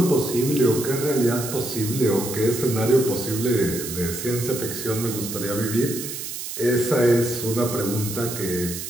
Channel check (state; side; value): noise; right; hiss, 7 dB below the sound